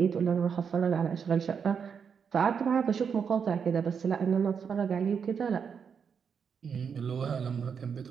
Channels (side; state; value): left; quieter; 6.7 dB